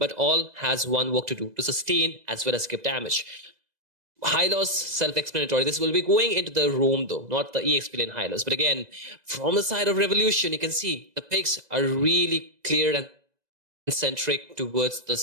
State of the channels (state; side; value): late; left; 2.0 ms